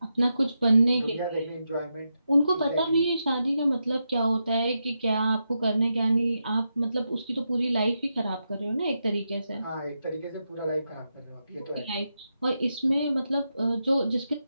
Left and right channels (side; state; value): both; inverted; correlation -0.86